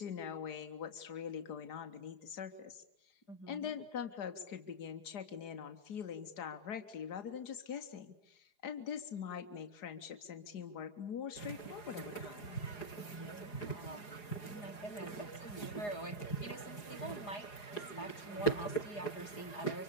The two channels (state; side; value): late; right; 4.8 ms